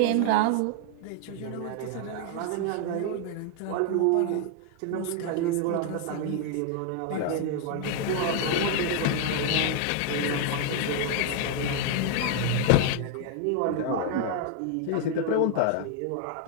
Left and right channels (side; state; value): both; different; correlation 0.00